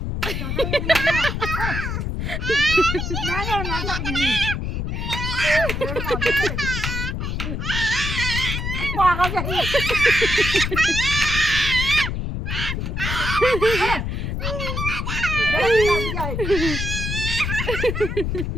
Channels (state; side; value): noise; left; rumble, 2 dB below the sound